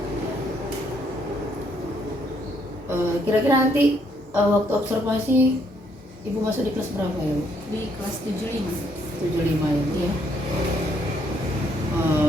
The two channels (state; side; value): normal; both; correlation 0.71